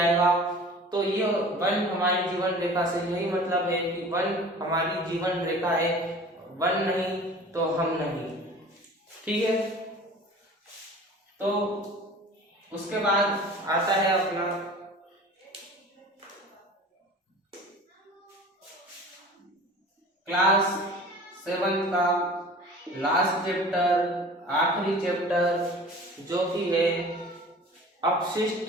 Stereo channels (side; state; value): both; normal; correlation 0.42